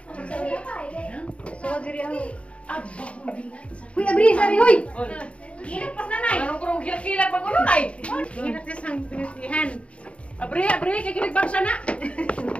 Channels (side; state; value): right; late; 0.062 ms